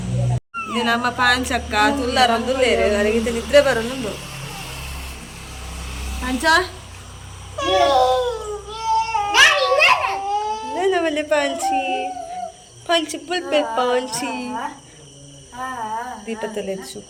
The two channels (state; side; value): identical; both; correlation 1.00